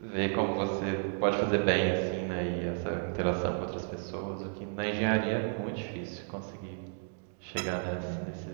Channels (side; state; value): left; silent; 56 dB below the other